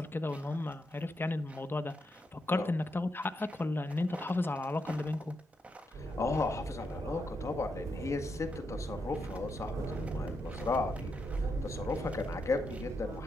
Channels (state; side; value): normal; both; correlation 0.83